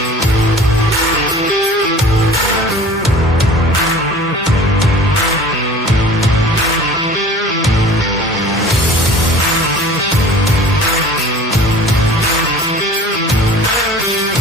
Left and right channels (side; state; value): both; normal; correlation 0.44